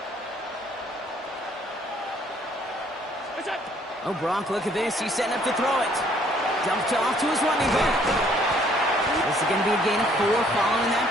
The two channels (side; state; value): both; normal; correlation 0.62